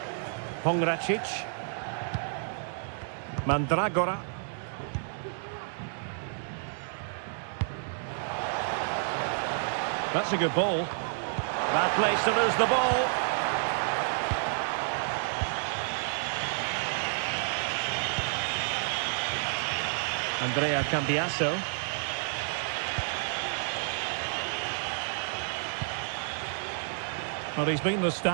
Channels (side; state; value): left; silent; digital silence